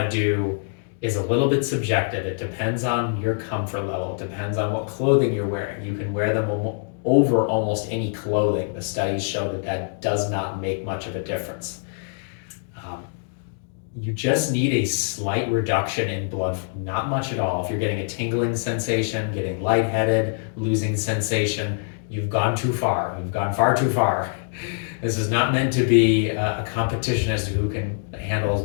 to do is a little bit subjective. It depends on your comfort level. It depends on what clothing you're wearing. You can wear them over almost any clothing. The studies show that that does not make much of a difference. You just need a slight reduction in blood flow, not much at all. If you're getting a tingling sensation, getting lightheaded, losing sensation, you've gone too far. You've gone far too far. This is not meant to be a competition as to who can handle as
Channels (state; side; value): silent; right; digital silence